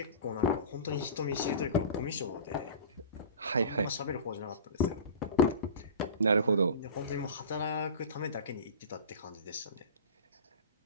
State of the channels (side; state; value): both; inverted; correlation -0.35